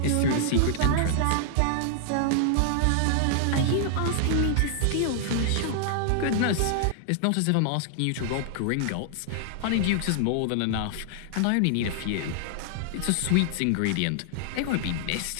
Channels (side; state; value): both; different; correlation -0.01